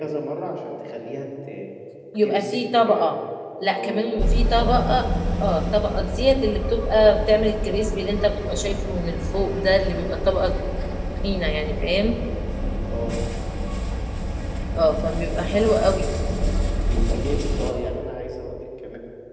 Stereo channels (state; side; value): identical; both; correlation 1.00